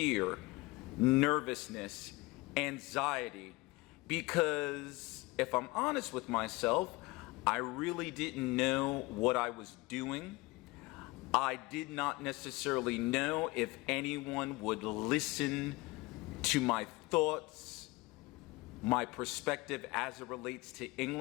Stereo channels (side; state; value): right; quieter; 22.6 dB